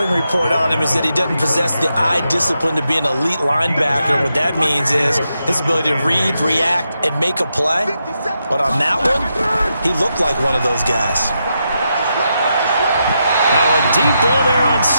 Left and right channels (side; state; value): both; inverted; correlation -0.84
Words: report on him is that he doesn't possess the eye discipline to be an elite linebacker. And what that means is his ability to read, react, and make a play. But on that one, he looked like one of those guys. Now a deep ball there on